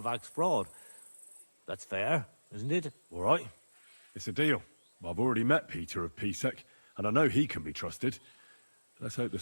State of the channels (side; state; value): both; inverted; correlation -1.00